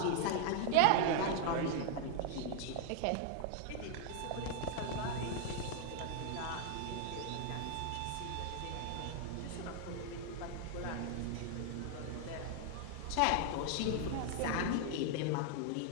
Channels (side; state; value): both; different; correlation 0.00